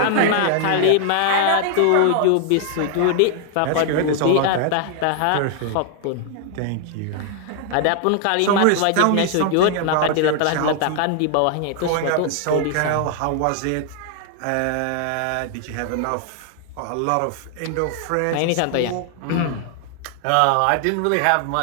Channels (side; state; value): both; different; correlation 0.00